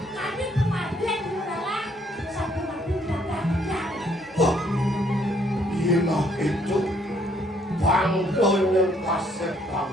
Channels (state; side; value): normal; both; correlation 0.67